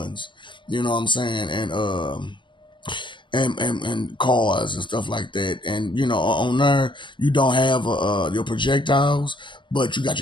You know what I'm saying? And cars and stuff like that. And on there you don't have your projectiles, but you got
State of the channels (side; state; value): right; late; 0.24 ms